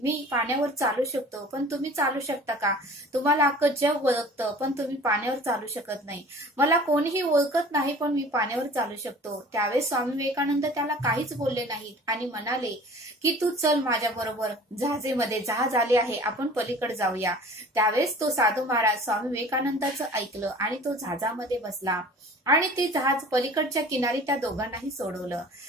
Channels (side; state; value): both; normal; correlation 0.45